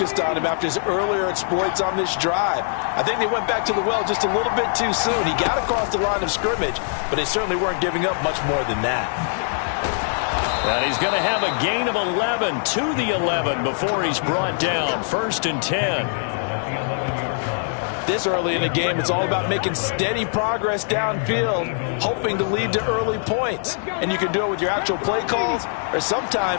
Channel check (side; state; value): right; silent; digital silence